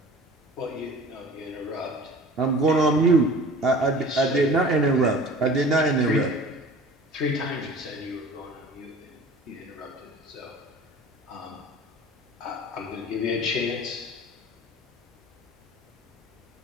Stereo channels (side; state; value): both; normal; correlation 0.43